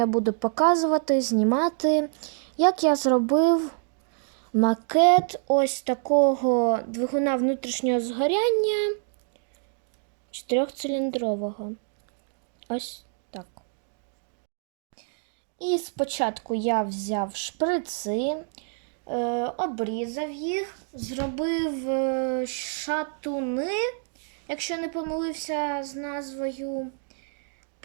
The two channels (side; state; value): left; silent; 60 dB below the other